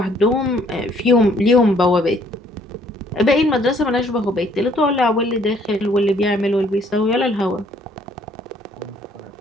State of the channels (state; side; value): normal; both; correlation 0.63